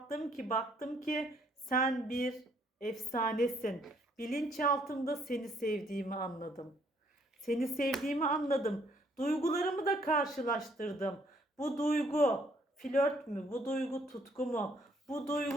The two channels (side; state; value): both; normal; correlation 0.66